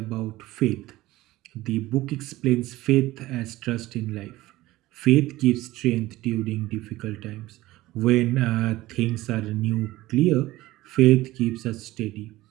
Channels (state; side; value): quieter; left; 17.5 dB